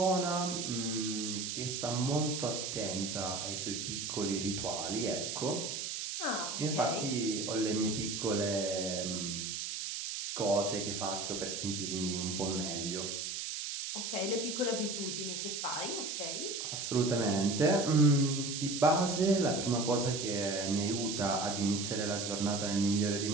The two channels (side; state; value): right; noise; hiss, 4 dB below the sound